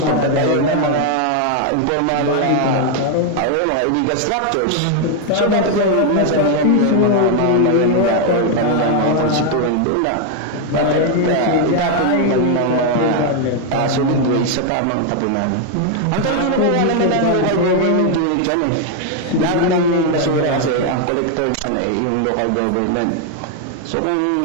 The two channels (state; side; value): different; both; correlation 0.01